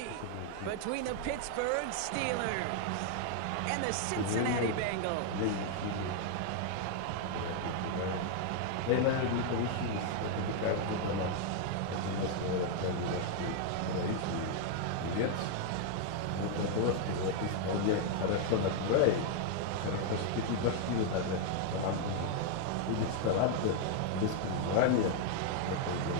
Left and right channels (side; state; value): both; different; correlation 0.00